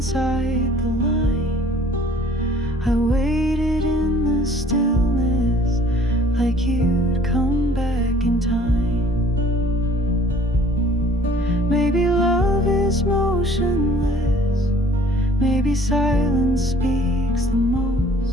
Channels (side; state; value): both; normal; correlation 0.54